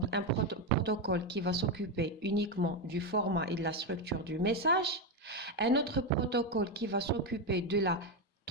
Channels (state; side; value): normal; both; correlation 0.09